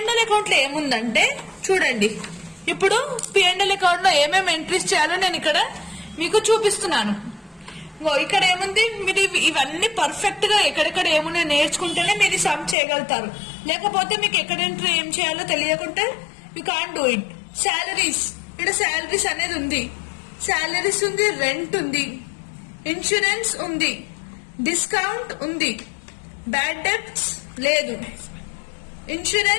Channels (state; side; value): drops out; right; at 12.8 s